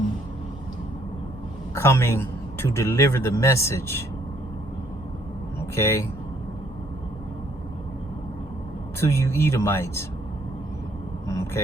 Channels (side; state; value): both; normal; correlation 0.66